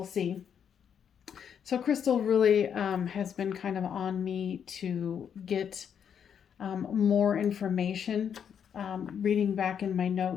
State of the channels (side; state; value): right; quieter; 8.0 dB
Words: see. So, Crystal really has been kind of on me to get more information. Reading back in my